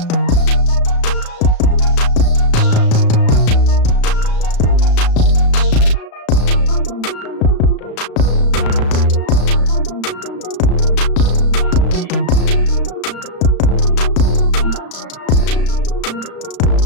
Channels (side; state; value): right; late; 35 ms